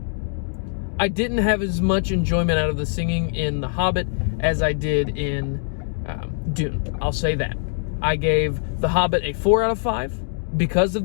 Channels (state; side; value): silent; right; digital silence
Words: I didn't have as much enjoyment out of the singing in The Hobbit as I did in Dune. I'll say that. I gave The Hobbit a 4 out of 5 because of